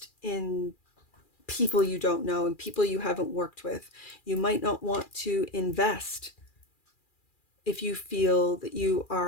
in people you don't know and people you haven't worked with. You might not want to invest if you feel that you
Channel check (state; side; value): late; right; 2.4 ms